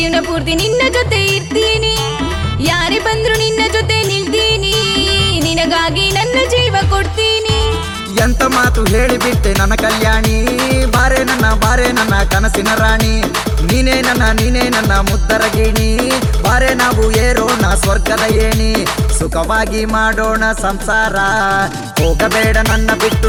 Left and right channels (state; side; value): identical; both; correlation 1.00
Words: ಪೂರ್ತಿ ನಿನ್ನ ಜೊತೆ ಇರ್ತೀನಿ ಯಾರೇ ಬಂದ್ರು ನಿನ್ನ ಜೊತೆ ನಿಲ್ತೀನಿ ನಿನಗಾಗಿ ನನ್ನ ಜೀವ ಕೊಡ್ತೀನಿ ಎಂತ ಮಾತು ಹೇಳಿಬಿಟ್ಟೆ ನನ್ನ ಕಲ್ಯಾಣಿ ಬಾರೆ ನನ್ನ ಕನಸಿನ ರಾಣಿ ನೀನೇ ನನ್ನ ಮುದ್ದರ ಗಿಣಿ ಬಾರೆ ನಾವು ಏರೋಣ ಸ್ವರ್ಗದ ಏಣಿ ಸುಖವಾಗಿ ಮಾಡೋಣ ಸಂಸಾರ ಹೋಗಬೇಡ ನನ್ನ ಬಿಟ್ಟು